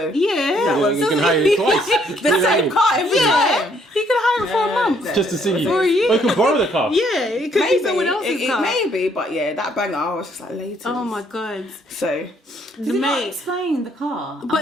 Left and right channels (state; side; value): normal; both; correlation 0.67